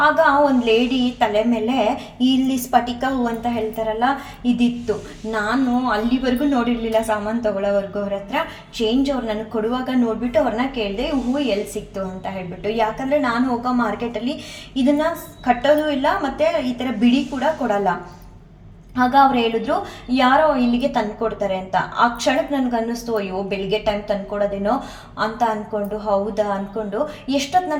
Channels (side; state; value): both; identical; correlation 1.00